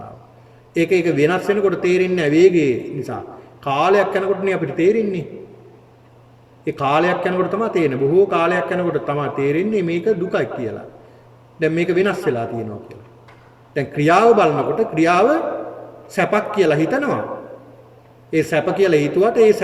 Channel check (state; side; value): identical; both; correlation 1.00